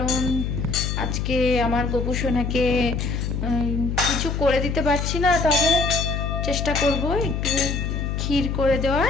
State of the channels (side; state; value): left; noise; hum, 2 dB below the sound